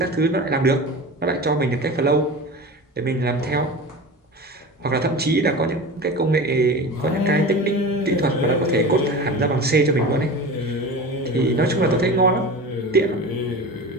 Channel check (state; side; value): normal; both; correlation 0.32